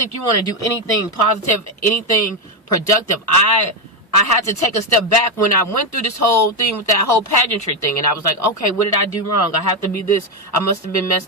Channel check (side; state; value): both; normal; correlation 0.07